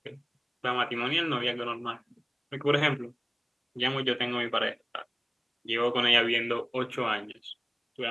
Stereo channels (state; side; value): identical; both; correlation 1.00